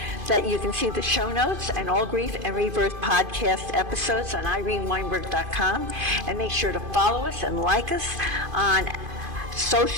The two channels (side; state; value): left; late; 2.5 ms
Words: that you can see the show notes and all Grief and Rebirth podcast episodes on ireneweinberg.com, and make sure to follow us and like us on